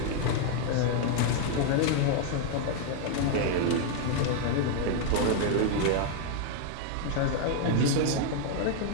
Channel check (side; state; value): both; different; correlation 0.00